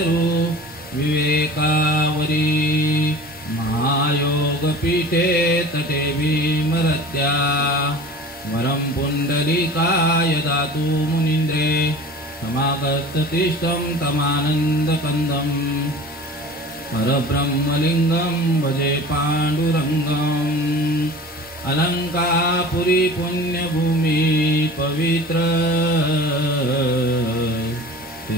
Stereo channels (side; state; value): both; normal; correlation 0.39